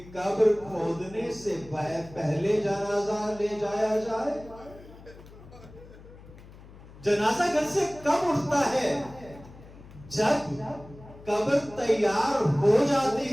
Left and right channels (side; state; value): left; noise; hum, 19 dB below the sound